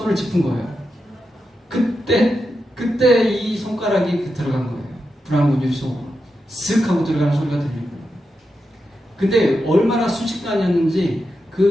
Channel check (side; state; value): both; normal; correlation 0.88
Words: 짚은 거예요. 그때 이 손가락이 들어간 거예요. 불안관 유리 속으로 쓱 하고 들어가는 소리가 들리는 거예요. 근데 얼마나 순식간이었는지